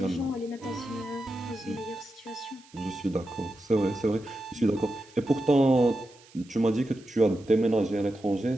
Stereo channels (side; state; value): right; noise; hiss, 26 dB below the sound